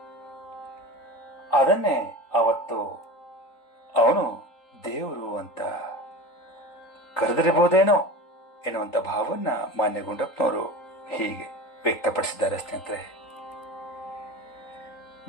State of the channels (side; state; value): right; late; 3.8 ms